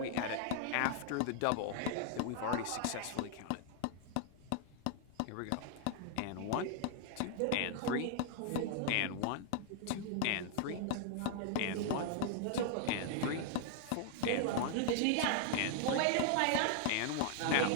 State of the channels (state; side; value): different; both; correlation 0.00